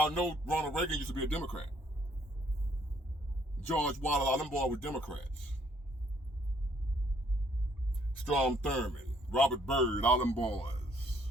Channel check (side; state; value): both; normal; correlation 0.65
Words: know Ronald Reagan used to be a Democrat? George Wallace, all them boys were Democrats. Strom Thurmond, Robert Byrd, all them boys.